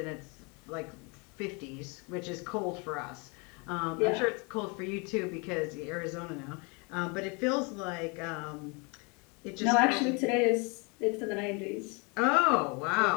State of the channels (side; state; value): right; quieter; 31.4 dB